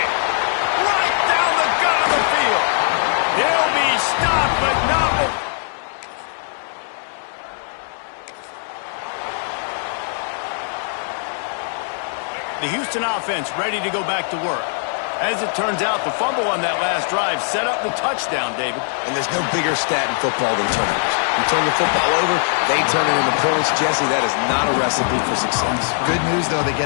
Right down the gut of the field. He'll be stopped, but not before. The Houston offense ready to go back to work. As it turns out, the fumble on that last drive set up the touchdown, David. And there's no bigger stat in football than turnovers. You turn the football over, they turn it into points. Jesse, that is not a recipe for success. Good news, though, they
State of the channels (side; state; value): right; silent; 63 dB below the other